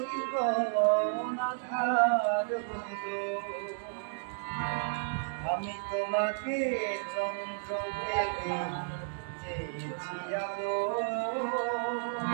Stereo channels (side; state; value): left; silent; digital silence